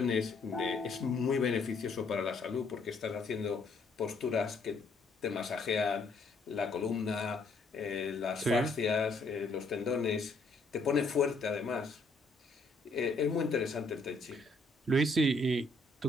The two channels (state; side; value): quieter; right; 3.2 dB